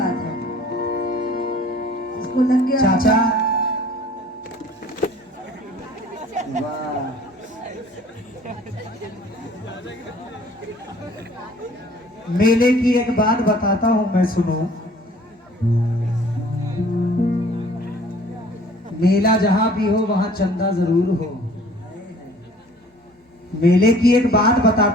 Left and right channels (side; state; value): both; normal; correlation 0.52